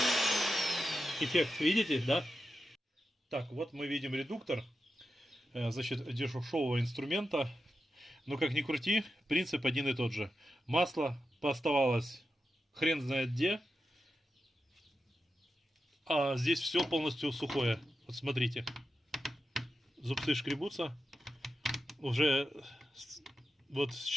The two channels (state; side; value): normal; both; correlation 0.90